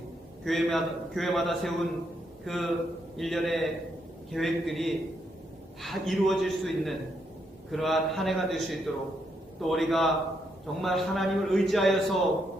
교회마다 세운 그 일련의 계획들이 다 이루어질 수 있는 그러한 한 해가 될 수 있도록, 또 우리가 정말 하나님을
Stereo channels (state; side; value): normal; both; correlation 0.77